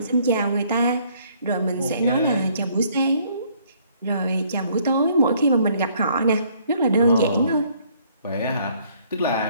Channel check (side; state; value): both; inverted; correlation -0.64